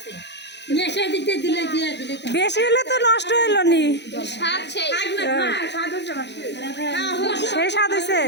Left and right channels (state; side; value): late; right; 0.50 ms